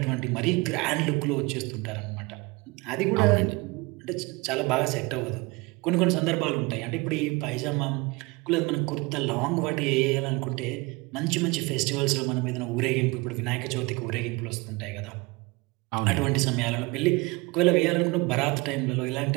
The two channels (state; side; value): quieter; left; 25.5 dB